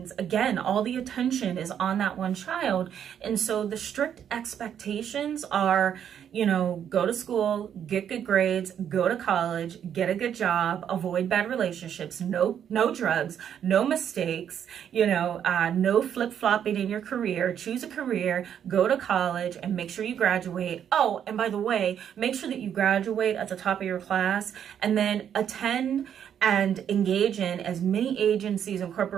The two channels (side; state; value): left; quieter; 9.0 dB